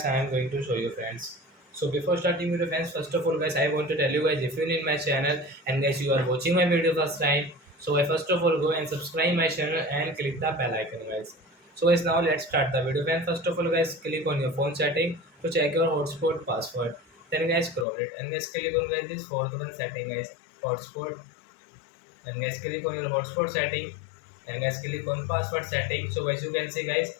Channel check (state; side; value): drops out; right; at 17.9 s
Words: I am going to show you friends. So before starting video friends, first of all guys, I want to tell you guys if you need my channel and guys you are watching my video first time, so I first of all go and subscribe my channel and click the bell icon guys. So guys now let's start the video. And first of all guys click on your phone setting to check your hotspot password. Then guys scroll it and guys click on guys this fourth one setting guys, hotspot, and guys click on your hotspot setting and guys click on password setting. So guys you can see guys